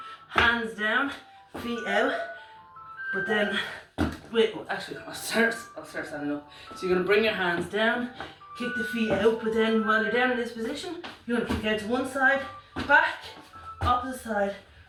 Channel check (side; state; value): both; identical; correlation 1.00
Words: hands down, feet out, but then, wait, actually I'll start standing up. So you're going to bring your hands down, kick the feet out, but then while you're down in this position, you're going to kick out to one side, back, opposite side,